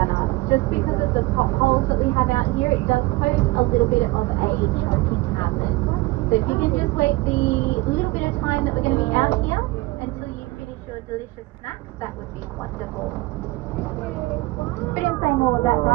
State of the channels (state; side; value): quieter; left; 20.9 dB